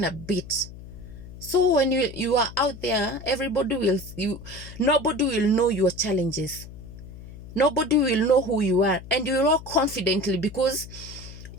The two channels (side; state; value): left; noise; hum, 15 dB below the sound